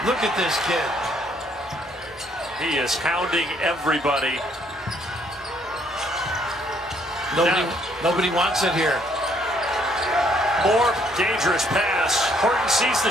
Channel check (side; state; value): both; normal; correlation 0.67